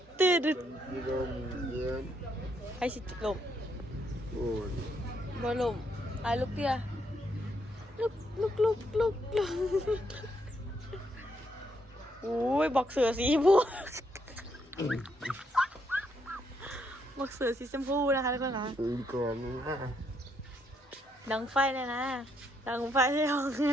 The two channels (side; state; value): both; normal; correlation 0.75